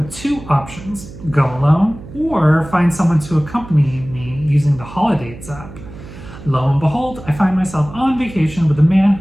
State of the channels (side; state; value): right; noise; hum, 15 dB below the sound